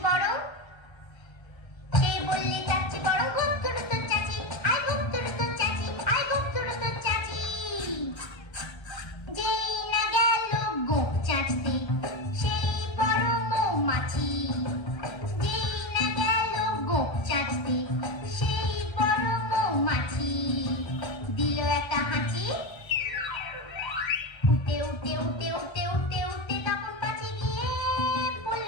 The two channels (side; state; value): right; late; 1.3 ms